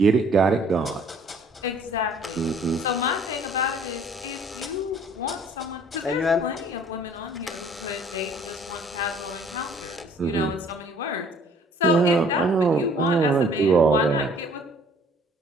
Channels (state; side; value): normal; both; correlation 0.56